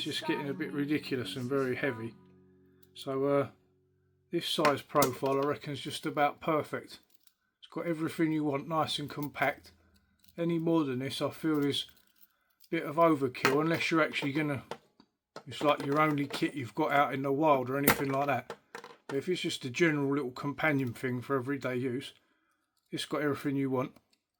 just getting a bit ridiculous and very heavy. So this size profile I reckon is just about perfect. It's got everything you want, nice and compact. Any more than this I feel is a bit of overkill, unless you're actually gonna, it's like your only kit you've got out in the wild or anything like that. But if it's just a general little companion thing for everyday use, it's got everything you want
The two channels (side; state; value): both; identical; correlation 1.00